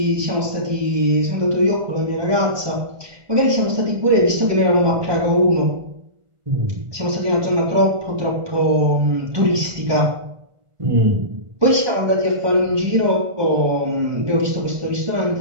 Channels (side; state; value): left; late; 1.4 ms